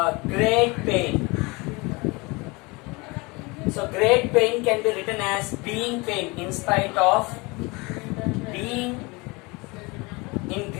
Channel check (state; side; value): quieter; right; 25.8 dB